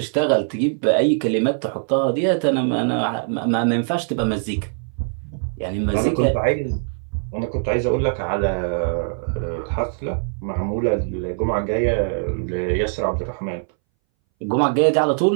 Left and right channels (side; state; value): left; silent; 62 dB below the other